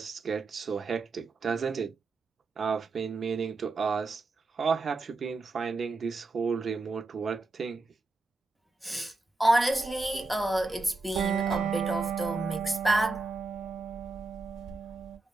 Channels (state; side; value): quieter; left; 3.4 dB